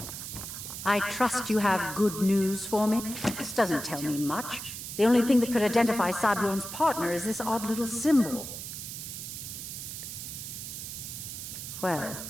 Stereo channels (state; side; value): noise; right; hiss, 8 dB below the sound